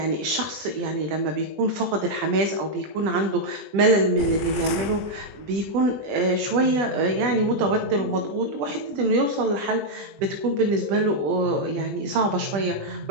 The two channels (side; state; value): left; late; 20 ms